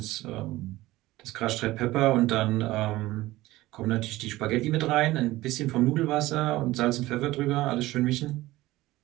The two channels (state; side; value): quieter; left; 17.8 dB